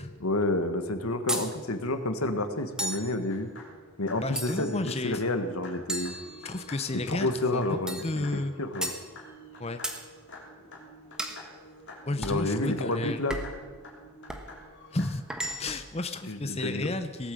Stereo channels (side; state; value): both; normal; correlation 0.28